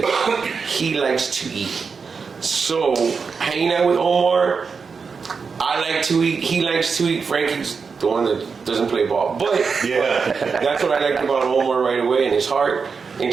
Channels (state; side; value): quieter; left; 5.3 dB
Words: he likes to eat. So hanging out with Omar, I like to eat, he likes to eat. Frankie's the one that doesn't play ball, but Yeah. that's what I liked about Omar right away, and his heart